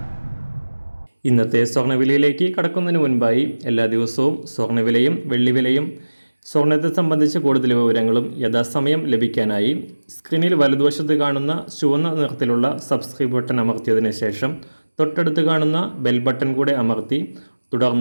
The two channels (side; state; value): both; inverted; correlation -1.00